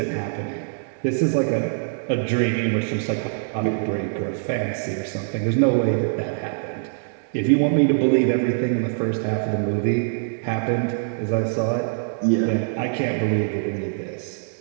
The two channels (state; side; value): silent; left; digital silence